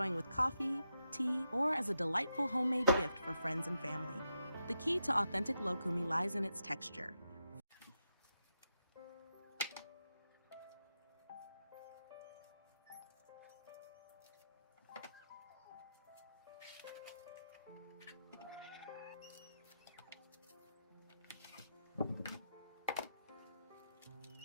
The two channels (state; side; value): inverted; both; correlation -0.85